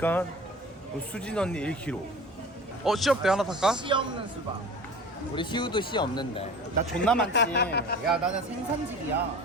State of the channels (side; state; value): both; normal; correlation 0.39